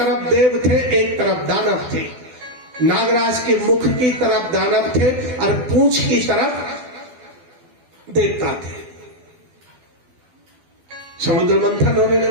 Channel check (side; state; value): left; late; 12 ms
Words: देव थे, एक तरफ दानव थे। नागराज के मुख की तरफ दानव थे और पूंछ की तरफ देवता थे। समुद्र मंथन होने